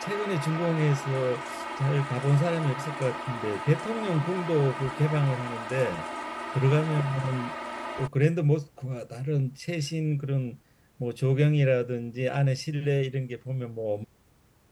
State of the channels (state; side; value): identical; both; correlation 1.00